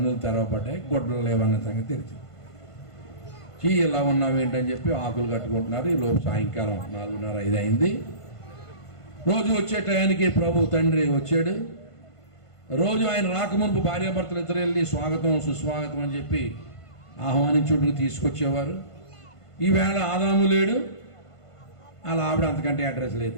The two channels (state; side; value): late; right; 1.5 ms